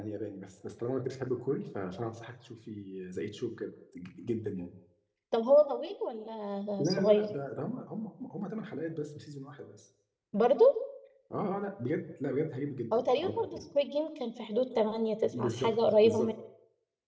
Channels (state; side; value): identical; both; correlation 1.00